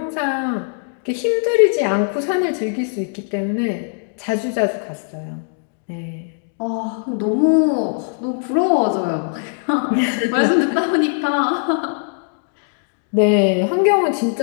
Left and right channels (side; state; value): right; silent; digital silence